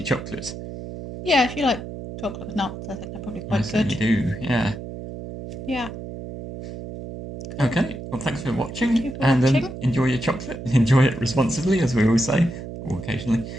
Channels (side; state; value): right; noise; hum, 10 dB below the sound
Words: chocolate. Yeah, if you like chocolate with nuts, I think they're probably quite good. You do, yeah. Yeah. Cool. Okay, well, thanks for watching. Thank you for watching. Enjoy your chocolate. Enjoy it responsibly, as we always say, or occasionally.